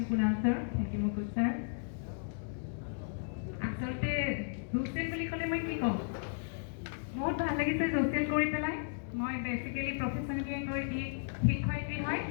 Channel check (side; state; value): right; silent; digital silence